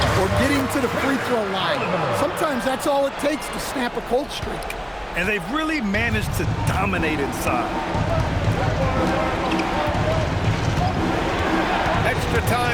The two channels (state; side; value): identical; both; correlation 1.00